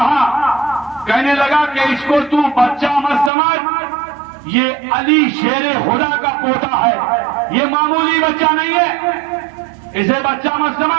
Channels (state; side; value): drops out; left; at 3.3 s